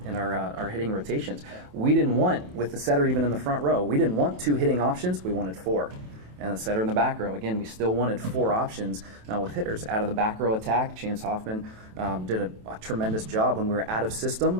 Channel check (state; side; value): late; left; 27 ms